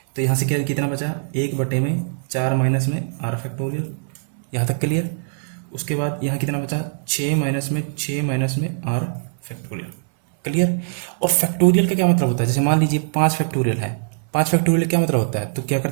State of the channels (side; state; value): left; silent; digital silence